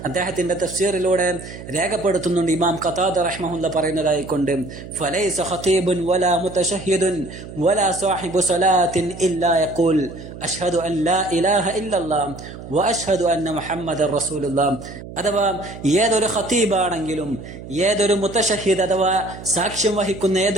അദ്ദേഹത്തിന്റെ തഫ്സീറിലൂടെ രേഖപ്പെടുത്തുന്നുണ്ട്. ഇമാം ഖതാദ റഹ്മഹുല്ല പറയുന്നതായിക്കൊണ്ട് ഫലൈസ ഖതീബുൻ വലാ മുതശഹ്ഹിദുൻ വലാ സാഹിബു സ്വലാത്തിൻ ഇല്ലാ യഖൂൽ അഷ്ഹദു അൻ ലാ ഇലാഹ ഇല്ലല്ലാഹ് വ അഷ്ഹദു അന്ന മുഹമ്മദർ റസൂലുള്ളാഹ്. അഥവാ ഏതൊരു ഖതീബാണെങ്കിലും, ഏതൊരു മുതശഹ്ഹിദ് അഥവാ സാക്ഷ്യം വഹിക്കുന്ന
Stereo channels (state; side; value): noise; right; hum, 13 dB below the sound